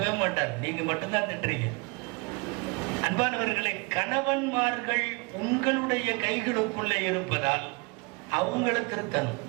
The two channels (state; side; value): quieter; left; 29.3 dB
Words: மாட்டார், நீங்க மட்டும்தான் திட்டுறீங்க. அன்பானவர்களை, கணவன்மார்கள் உங்களுடைய கைகளுக்குள்ளே இருப்பதால் அவங்கள திருத்தணும்.